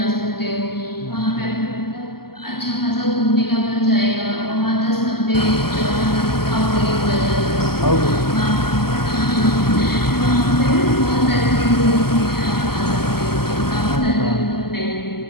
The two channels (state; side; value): late; right; 0.95 ms